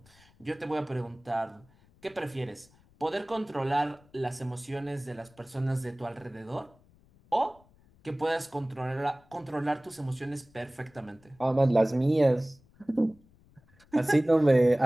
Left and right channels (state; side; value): noise; left; rumble, 29 dB below the sound